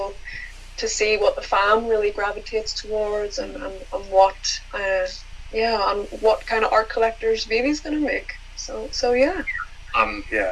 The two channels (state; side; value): identical; both; correlation 1.00